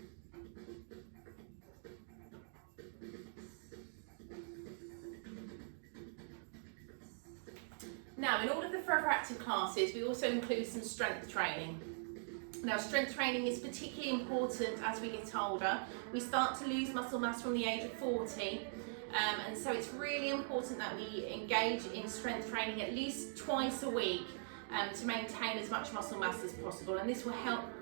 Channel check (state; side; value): silent; left; digital silence